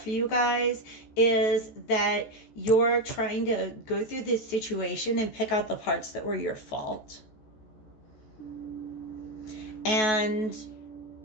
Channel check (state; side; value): late; right; 14 ms